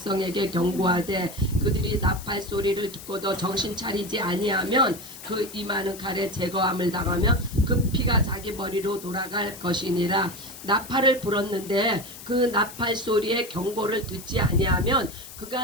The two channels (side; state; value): left; noise; hiss, 15 dB below the sound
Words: 경고하되 그들이 나팔 소리를 듣고도 정신 차리지 아니하면 그 임하는 칼에 제거함을 당하며 그 피가 자기 머리로 돌아갈 것이니라. 나팔을 불었는데 그 나팔 소리에 경고를 듣지 아니하면